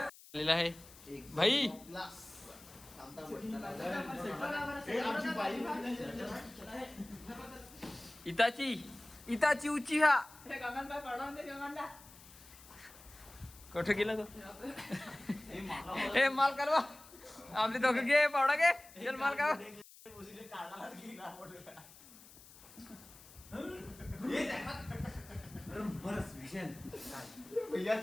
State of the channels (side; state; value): left; noise; hiss, 20 dB below the sound